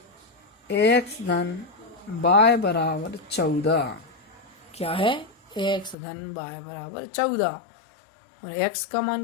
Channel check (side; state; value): right; drops out; at 6.0 s